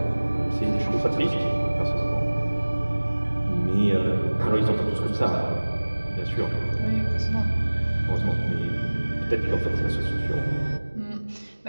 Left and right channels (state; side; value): inverted; both; correlation -1.00